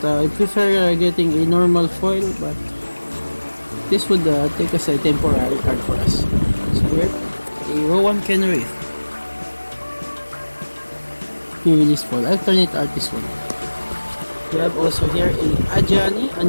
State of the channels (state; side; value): inverted; both; correlation -1.00